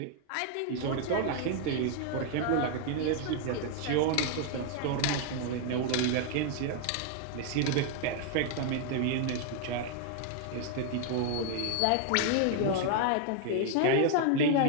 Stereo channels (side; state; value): both; different; correlation 0.00